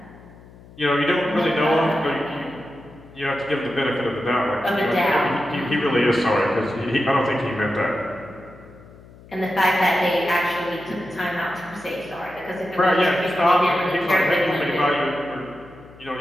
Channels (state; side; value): noise; left; hum, 22 dB below the sound